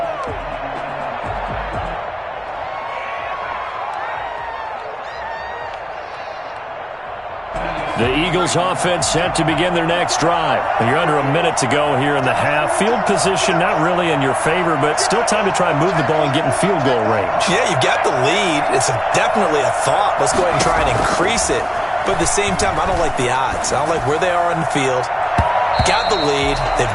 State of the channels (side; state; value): both; identical; correlation 1.00